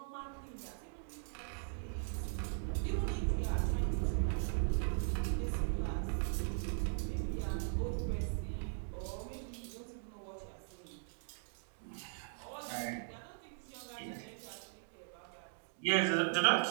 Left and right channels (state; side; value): silent; left; digital silence